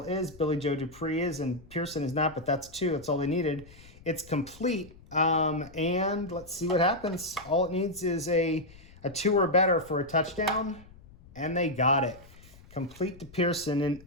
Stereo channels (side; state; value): left; noise; rumble, 22 dB below the sound